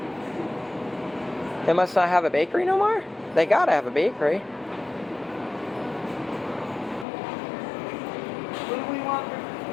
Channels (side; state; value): right; drops out; at 7.1 s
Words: They must not have a bakery no more? They gotta have a bakery. What do we want for